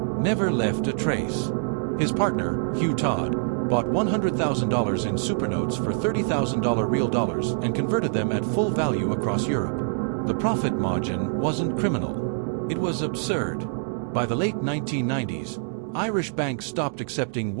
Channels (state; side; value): silent; left; digital silence